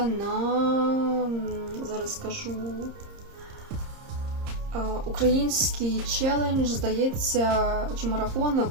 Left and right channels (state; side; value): late; left; 30 ms